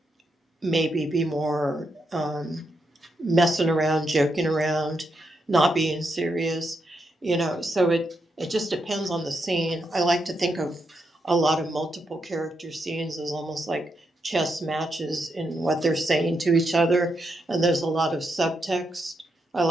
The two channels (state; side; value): normal; both; correlation 0.82